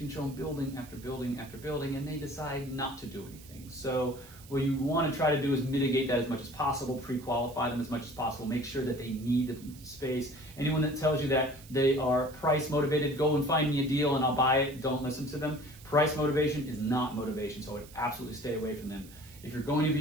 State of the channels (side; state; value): right; noise; hiss, 21 dB below the sound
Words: show them building after building after building, and they decide not to do anything. So what you want to try to do is mitigate that as much as possible, pre-qualify them as much as possible, make sure that they need the space. Anyone that tells you that they are price motivated, go and find me a deal and I'll buy it, don't listen to them. Price motivation is not motivation, so I would absolutely stay away from them. If you're going to